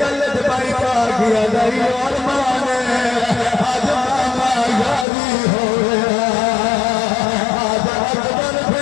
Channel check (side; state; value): right; drops out; at 5.1 s